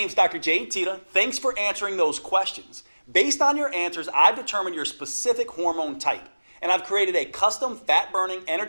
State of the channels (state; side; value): inverted; both; correlation -1.00